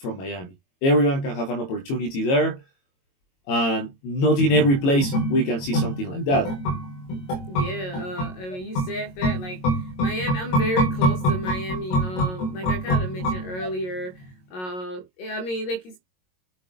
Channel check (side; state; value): right; late; 22 ms